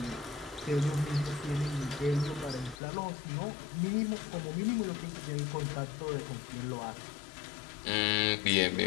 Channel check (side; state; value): right; drops out; at 2.8 s